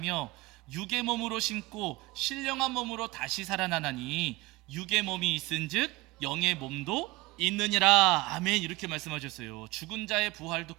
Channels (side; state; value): left; quieter; 21.5 dB